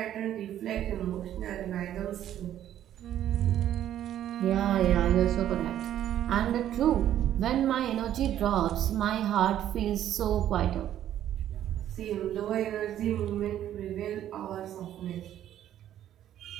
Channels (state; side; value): quieter; left; 11.4 dB